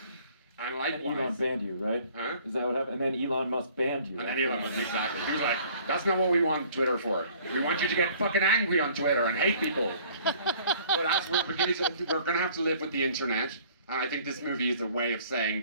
And likewise, Elon banned you, right? Huh? Is that what happened? And then Elon Musk banned you. And then Elon Musk, exactly. He was like, that's not what we want Twitter for. We want you to get fucking angry on Twitter and hate people. But as we're going to have to live with the internet. And I think this movie is a way of saying,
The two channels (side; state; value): both; inverted; correlation -0.54